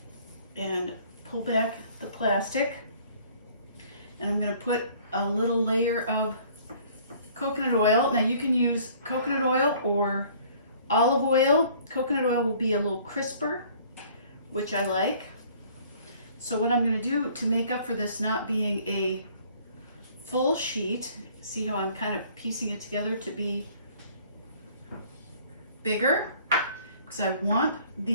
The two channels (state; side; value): inverted; both; correlation -0.55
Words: and pull back the plastic, and I'm gonna put a little layer of coconut oil. Now you can use coconut oil or olive oil. Coconut oil will be a little crisper, which I like. So what I'm gonna do to make up for this not being a full sheet, see how I'm kind of piecing it together to be bigger, because I want